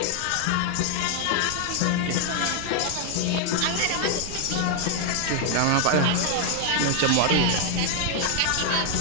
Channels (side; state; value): both; different; correlation 0.00